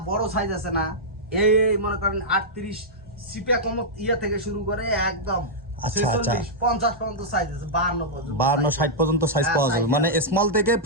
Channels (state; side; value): normal; both; correlation -0.08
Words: বড় সাইজ আছে না, এই মনে করেন 38 সিপে কম ইয়া থেকে শুরু করে একদম 46 50 পর্যন্ত সাইজ আছে, 52 পর্যন্ত, 52 60 পর্যন্ত সাইজ পাওয়া যাবে। মানে স্মল থেকে